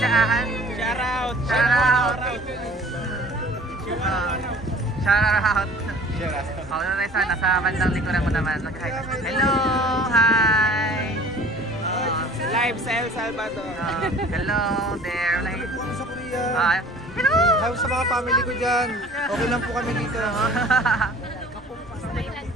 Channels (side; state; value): both; normal; correlation 0.47